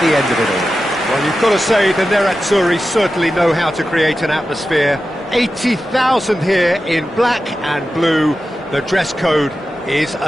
end of it all. Well, you've got to say the Nerazzurri certainly know how to create an atmosphere. 80,000 here in black and blue. The dress code is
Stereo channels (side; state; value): both; normal; correlation 0.92